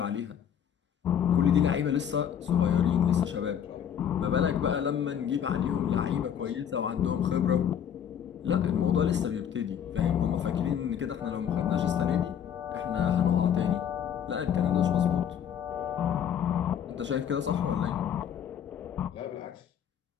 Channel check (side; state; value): right; quieter; 8.9 dB